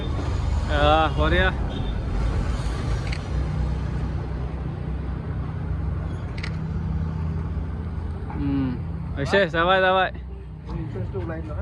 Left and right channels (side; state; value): both; identical; correlation 1.00